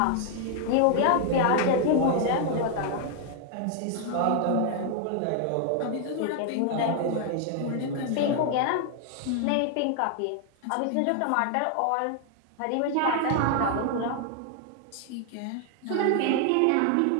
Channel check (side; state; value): both; different; correlation 0.00